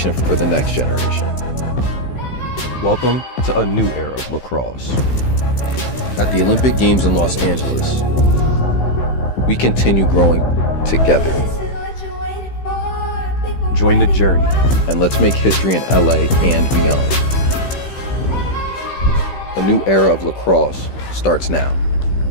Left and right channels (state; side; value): late; right; 15 ms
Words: for the next generation. Welcome to a new era of lacrosse. At the Olympic Games in Los Angeles, we continue growing together. Join the journey, and let's make history in LA and beyond. A new era of lacrosse starts now.